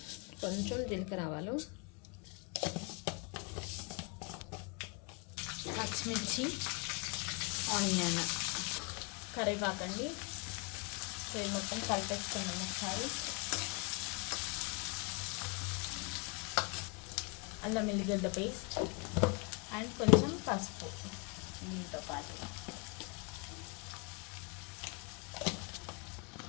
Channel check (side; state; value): right; quieter; 32.4 dB